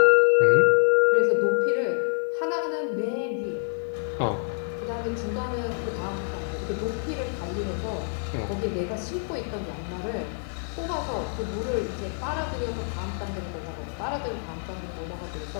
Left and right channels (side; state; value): right; silent; 60 dB below the other